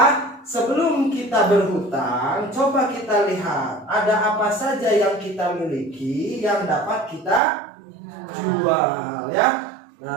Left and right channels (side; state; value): left; drops out; at 7.4 s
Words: sebelum kita berhutang, coba kita lihat ada apa saja yang kita miliki yang dapat kita jual ya.